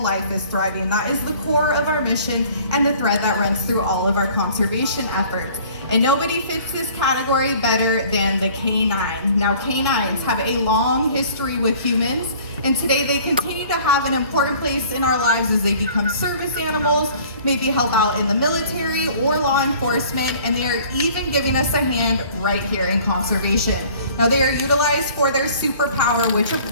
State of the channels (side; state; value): both; inverted; correlation -0.51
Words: life is thriving. That is the core of our mission and the thread that runs through all of our conservation efforts. And nobody fits this category better than the canine. Now, canines have a long history with humans, and today they continue to have an important place in our lives as they become service animals, maybe help out in the military or law enforcement, and they are even giving us a hand right here in conservation. Now, they are utilized for their superpower, which of